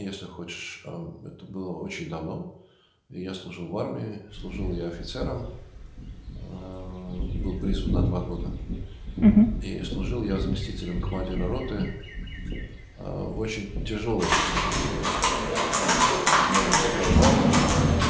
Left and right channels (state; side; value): identical; both; correlation 1.00